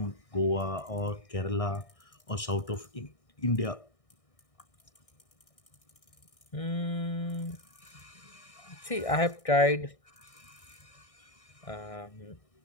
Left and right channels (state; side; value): late; right; 1.6 ms